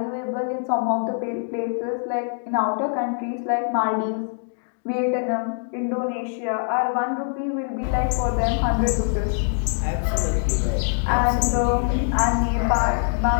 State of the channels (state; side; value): silent; right; 63 dB below the other